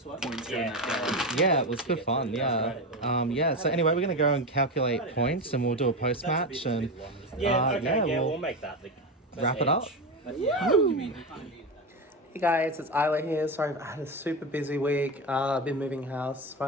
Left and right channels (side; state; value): both; normal; correlation 0.17